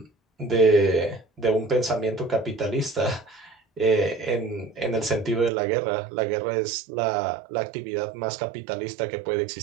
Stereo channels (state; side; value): drops out; left; at 5.5 s